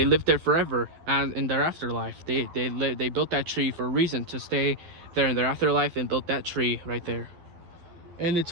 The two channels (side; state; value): left; late; 12 ms